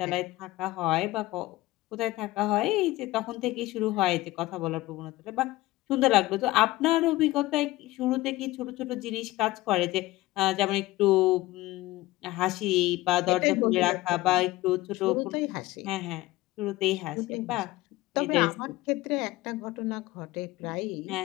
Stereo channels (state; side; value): quieter; right; 18.1 dB